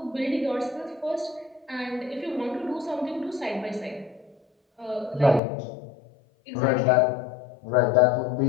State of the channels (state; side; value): drops out; right; at 5.4 s